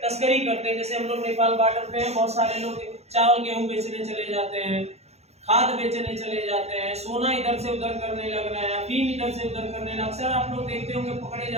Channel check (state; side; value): late; left; 0.31 ms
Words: तस्करी करते हैं, जैसे हम लोग नेपाल बॉर्डर पे हैं, बहुत सारे लोग चावल गेहूं बेचने चले जाते हैं, खाद बेचने चले जाते हैं, सोना इधर से उधर करने लग रहे हैं, अफीम इधर से उधर करने लग, अक्सर आप लोग देखते होंगे पकड़े